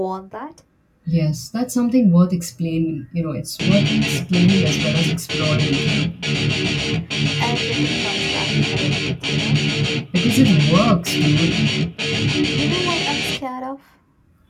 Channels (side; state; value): both; identical; correlation 1.00